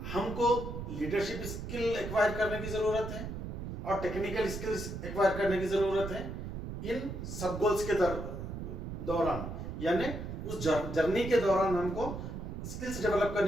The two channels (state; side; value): noise; right; rumble, 6 dB below the sound